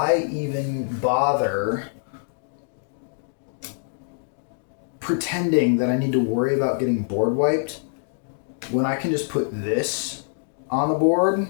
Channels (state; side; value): silent; right; digital silence